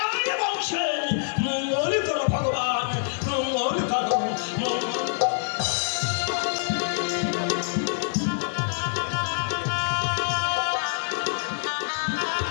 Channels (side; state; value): right; silent; 61 dB below the other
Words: বংশের মঙ্গল করো ভগবান, মঙ্গল করো, মঙ্গল।